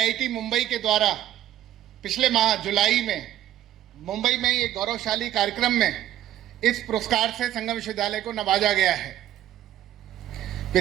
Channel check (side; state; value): left; quieter; 12.5 dB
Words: मुंबई के द्वारा पिछले माह जुलाई में मुंबई में ये गौरवशाली कार्यक्रम में इस पुरस्कार से संगम विश्वविद्यालय को नवाजा गया है।